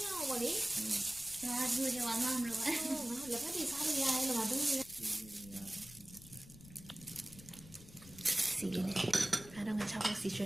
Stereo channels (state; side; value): noise; left; rumble, 18 dB below the sound